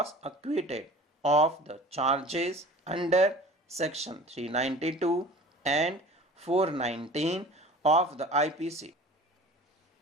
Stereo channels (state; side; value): normal; both; correlation 0.43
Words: acquitted of the charges under section 392 and 419 of the IPC.